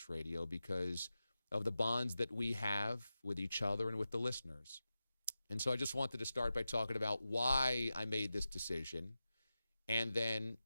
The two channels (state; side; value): inverted; both; correlation -0.93